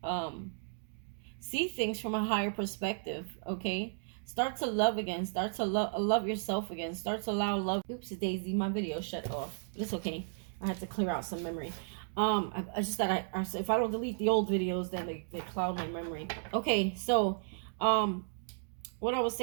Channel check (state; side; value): silent; left; digital silence